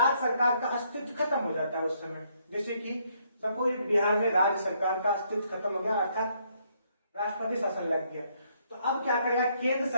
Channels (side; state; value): both; inverted; correlation -0.71